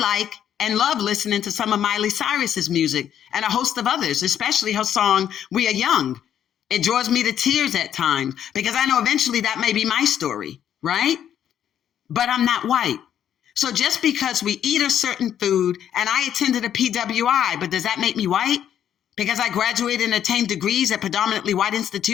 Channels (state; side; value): quieter; right; 9.9 dB